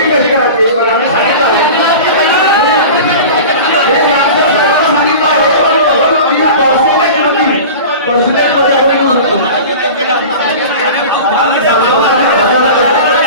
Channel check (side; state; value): both; inverted; correlation -0.35